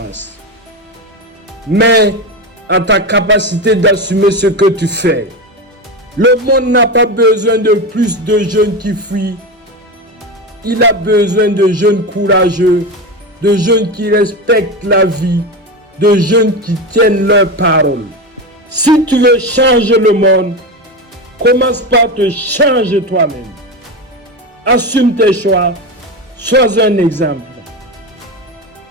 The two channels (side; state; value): both; normal; correlation 0.18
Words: mais à ta capacité d'assumer ce que tu fais. Le monde n'a pas besoin de plus de jeunes qui fuient. Il a besoin de jeunes courageux, de jeunes qui respectent la vie, de jeunes qui tiennent leurs paroles. Si tu veux changer le monde, commence par te changer toi-même. Assume tes choix, sois un exemple.